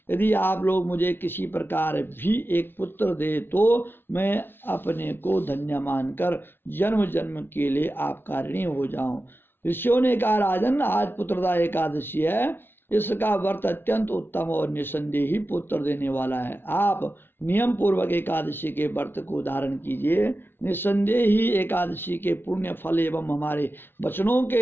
यदि आप लोग मुझे किसी प्रकार भी एक पुत्र दे तो मैं अपने को धन्य मानकर जन्म जन्म के लिए आपका ऋणी हो जाऊँ। ऋषियों ने कहा, राजन आज पुत्रदा एकादशी है, इसका व्रत अत्यंत उत्तम और निसंदेह ही पुत्र देने वाला है। आप नियम पूर्वक एकादशी के व्रत को धारण कीजिए। निसंदेह ही एकादशी के पुण्य फल एवं हमारे वचनों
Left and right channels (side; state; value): right; late; 0.10 ms